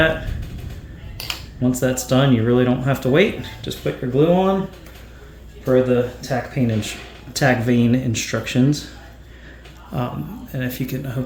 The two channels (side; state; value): both; identical; correlation 1.00